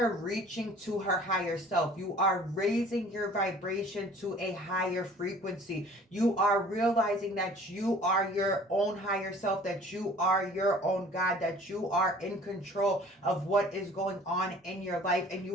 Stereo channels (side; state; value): both; normal; correlation 0.50